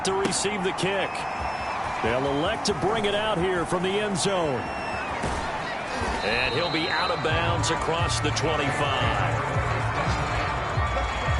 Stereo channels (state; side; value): identical; both; correlation 1.00